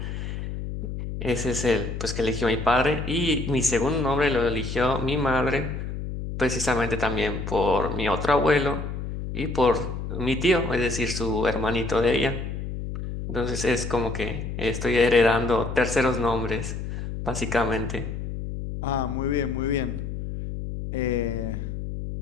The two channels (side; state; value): left; noise; hum, 6 dB below the sound